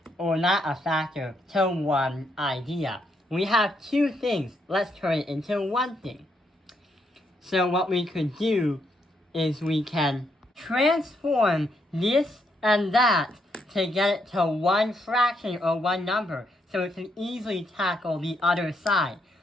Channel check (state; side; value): normal; both; correlation 0.77